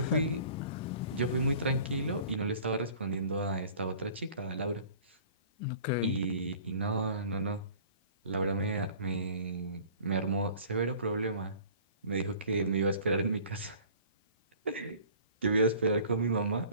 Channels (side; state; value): both; inverted; correlation -0.48